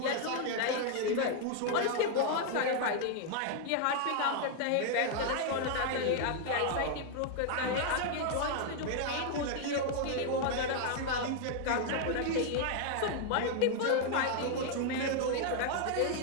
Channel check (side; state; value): both; different; correlation 0.00